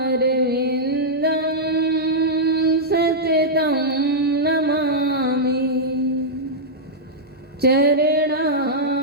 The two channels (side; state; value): both; normal; correlation -0.08